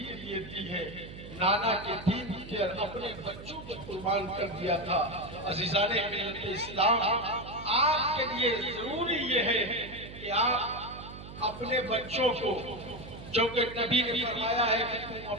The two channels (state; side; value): noise; right; hum, 13 dB below the sound